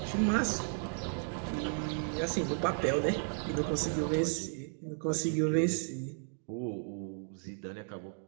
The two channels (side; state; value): left; silent; 55 dB below the other